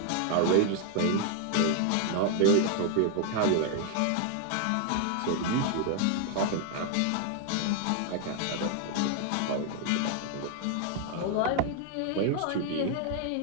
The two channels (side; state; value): both; different; correlation 0.00